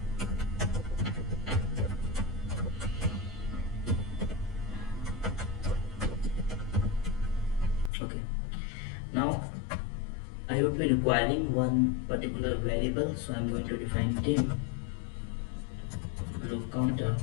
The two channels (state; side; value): drops out; right; at 7.9 s